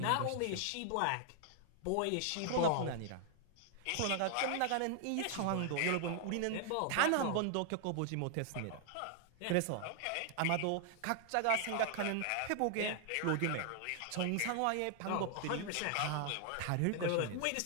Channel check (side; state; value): both; different; correlation 0.00